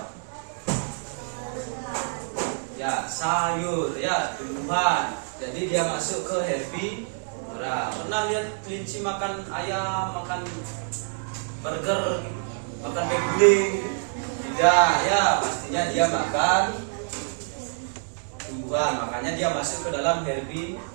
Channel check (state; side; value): silent; left; 61 dB below the other